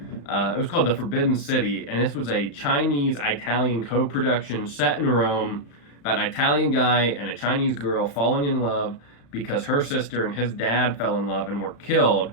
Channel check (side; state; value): right; late; 35 ms